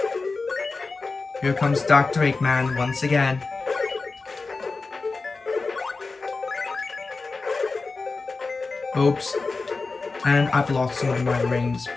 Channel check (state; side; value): quieter; right; 3.9 dB